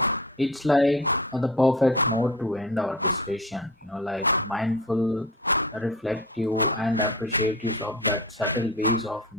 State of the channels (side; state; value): both; normal; correlation 0.35